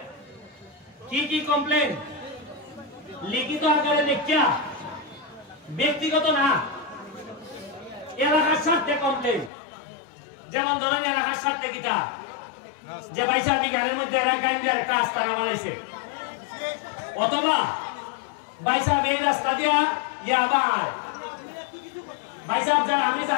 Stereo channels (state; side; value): drops out; right; at 9.5 s